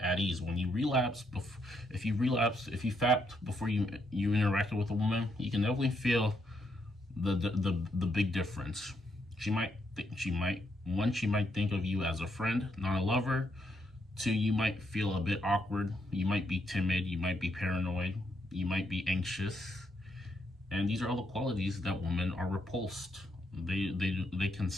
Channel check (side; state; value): both; normal; correlation 0.77